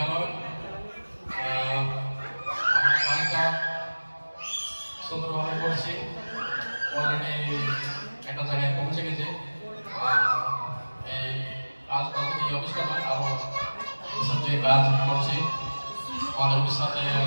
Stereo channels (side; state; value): both; inverted; correlation -1.00